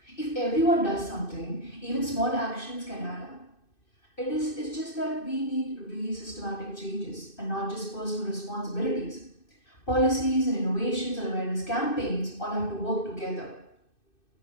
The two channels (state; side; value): late; right; 2.6 ms